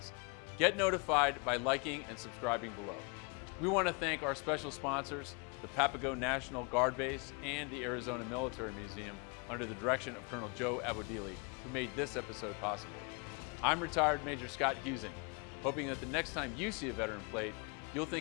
Get notified by liking and subscribing below. We want to thank our special sponsors, the Papago National Guard Base and the Arizona Military Museum, under the direction of Colonel Joe Abodili, who made this episode possible. I'm retired Major Scott Husing, hoping that the next time you see a veteran plate, you'll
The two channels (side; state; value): right; quieter; 32.7 dB